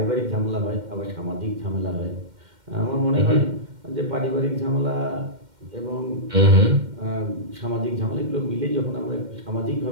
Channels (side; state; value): left; late; 2.1 ms